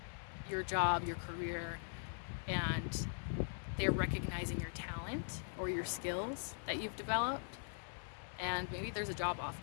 your job, your career, and they're recognizing your talent or your skills that you've developed, and maybe there's a job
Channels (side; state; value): right; silent; 50 dB below the other